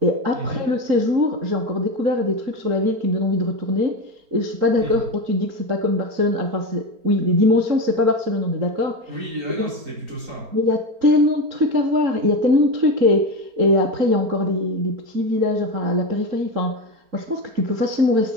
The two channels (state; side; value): late; left; 4.4 ms